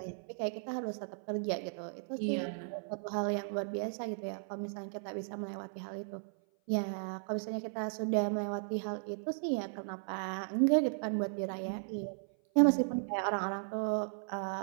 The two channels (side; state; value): left; silent; 54 dB below the other